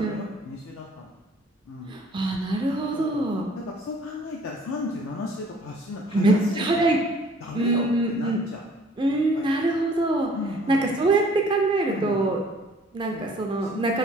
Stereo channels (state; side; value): normal; both; correlation 0.55